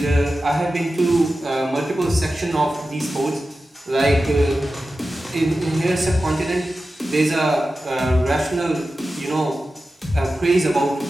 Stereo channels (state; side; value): normal; both; correlation 0.93